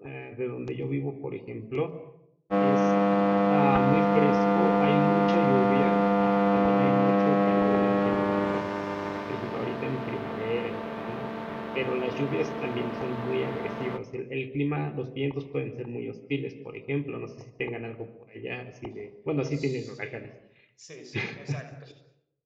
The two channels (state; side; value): identical; both; correlation 1.00